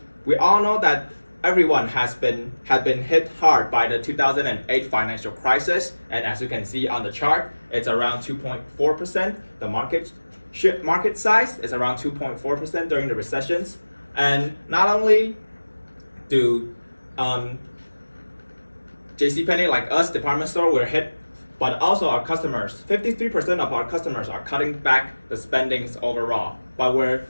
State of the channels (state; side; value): inverted; both; correlation -1.00